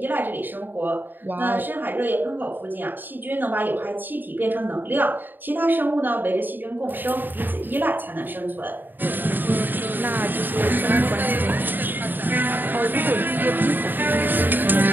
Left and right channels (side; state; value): left; late; 0.092 ms